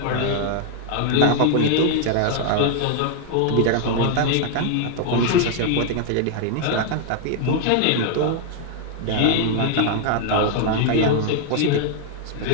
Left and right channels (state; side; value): different; both; correlation 0.00